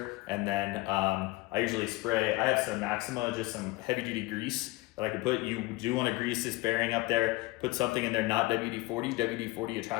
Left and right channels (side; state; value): right; quieter; 21.2 dB